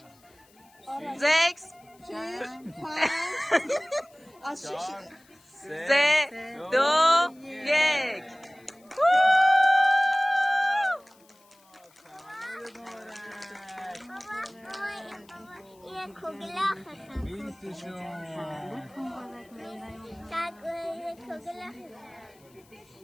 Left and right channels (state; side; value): noise; left; hiss, 30 dB below the sound